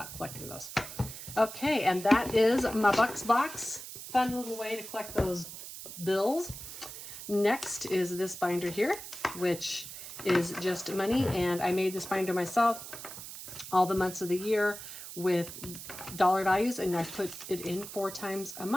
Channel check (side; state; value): right; noise; hiss, 11 dB below the sound